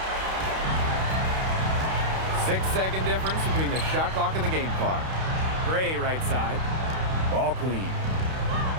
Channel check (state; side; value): late; left; 32 ms